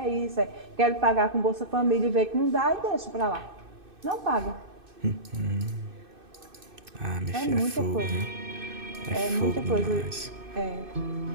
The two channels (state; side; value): late; left; 2.6 ms